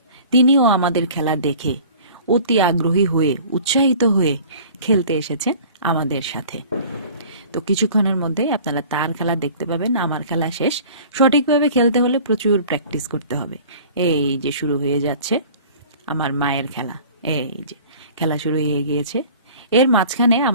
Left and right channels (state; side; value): inverted; both; correlation -0.45